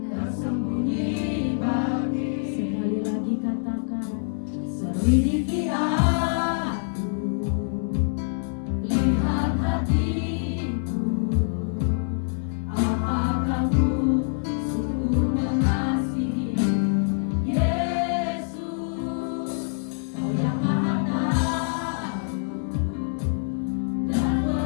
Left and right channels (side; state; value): right; silent; digital silence